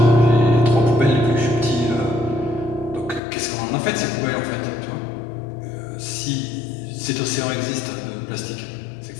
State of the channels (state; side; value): drops out; right; at 3.2 s